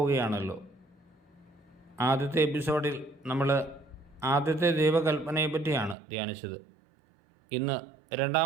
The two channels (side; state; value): left; drops out; at 6.0 s